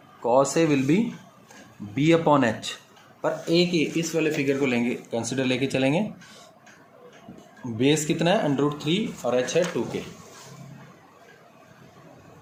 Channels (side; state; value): both; identical; correlation 1.00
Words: A will be B/H, पर ए के इस वाले फिगर को लेंगे, कंसिडर लेके चलेंगे, बेस कितना है √3 और H है 2K,